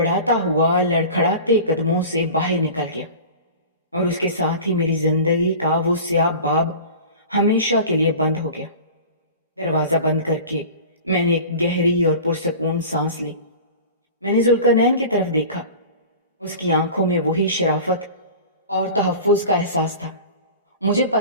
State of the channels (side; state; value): both; inverted; correlation -0.37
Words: ہوا لڑکھڑاتے قدموں سے باہر نکل گیا، اور اس کے ساتھ ہی میری زندگی کا وہ سیاہ باب ہمیشہ کے لیے بند ہو گیا۔ دروازہ بند کر کے میں نے ایک گہری اور پرسکون سانس لی۔ میں نے ذوالقرنین کی طرف دیکھا۔ اس کی آنکھوں میں وہی شرافت اور تحفظ کا احساس تھا۔ مجھے